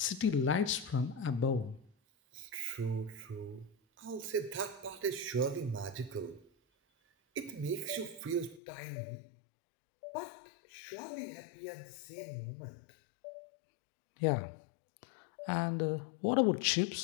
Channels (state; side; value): drops out; right; at 8.6 s